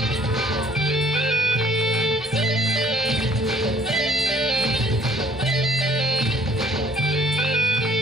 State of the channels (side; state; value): both; normal; correlation 0.59